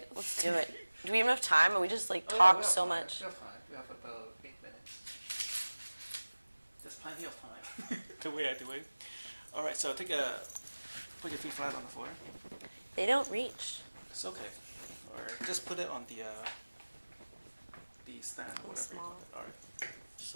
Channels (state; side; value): inverted; both; correlation -1.00